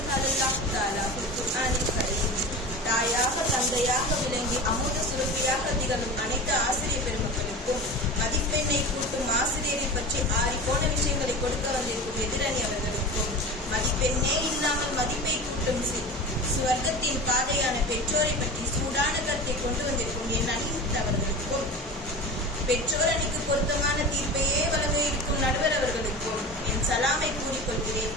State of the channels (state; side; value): normal; both; correlation 0.31